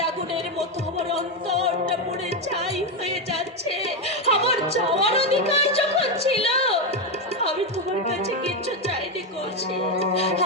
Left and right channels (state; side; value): normal; both; correlation 0.08